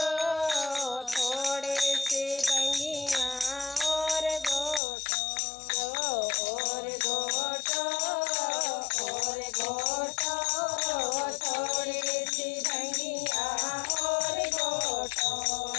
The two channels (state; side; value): drops out; right; at 4.8 s